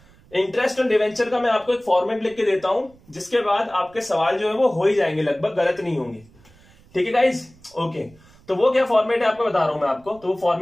इंटरेस्ट ऑन डिवेंचर का मैं आपको एक फॉर्मेट लिख के देता हूं, जिसके बाद आपके सवाल जो है वो हो ही जाएंगे, लगभग गलत नहीं होंगे, ठीक है गाइस। ओके, तो वो क्या फॉर्मेट है आपको बता रहा हूं मैं आपको। तो वो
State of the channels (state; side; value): noise; right; rumble, 27 dB below the sound